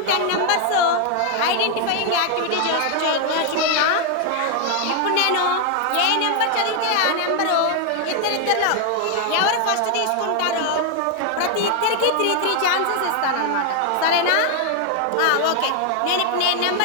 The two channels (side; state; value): both; different; correlation 0.00